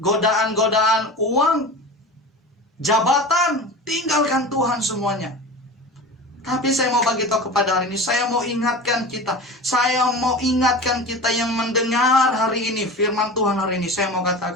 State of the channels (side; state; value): both; normal; correlation 0.33